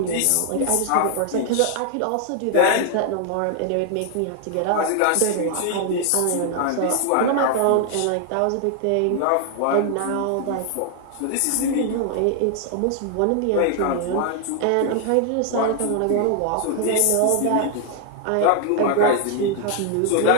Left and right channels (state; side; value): different; both; correlation 0.00